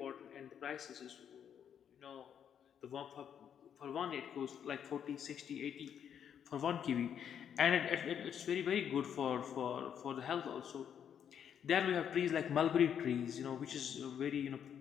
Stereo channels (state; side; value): quieter; right; 8.6 dB